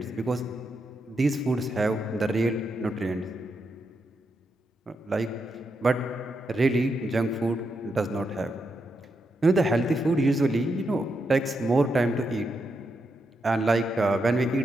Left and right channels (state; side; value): normal; both; correlation 0.83